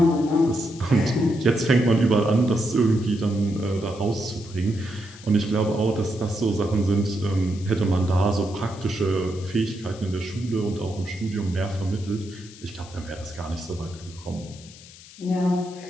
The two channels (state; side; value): noise; left; hiss, 20 dB below the sound